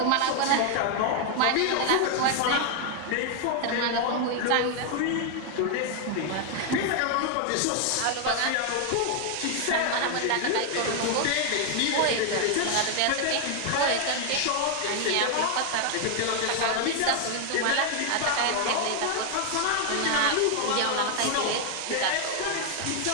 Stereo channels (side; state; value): both; different; correlation 0.00